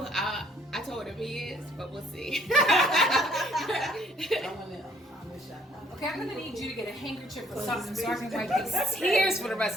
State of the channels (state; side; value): normal; both; correlation 0.61